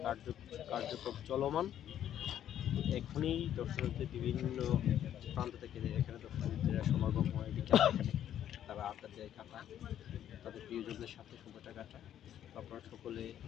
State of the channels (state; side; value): quieter; right; 10.7 dB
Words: কার্যক্রম চলমান। এখনই দর্শনার্থী বিভিন্ন প্রান্ত থেকে এখানে দর্শনার্থীরা সমাগম হয়। এখানে তারা আড্ডা দেয়, কাটায়, তাদের প্রিয়জনদের সাথে সময়টা কাটায়। আপনারা সকলে